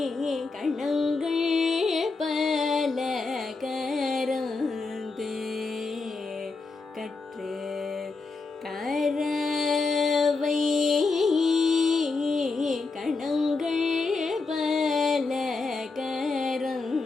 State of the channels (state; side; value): quieter; right; 4.0 dB